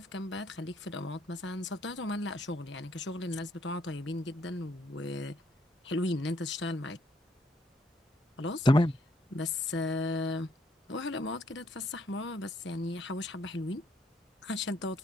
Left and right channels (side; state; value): both; normal; correlation 0.70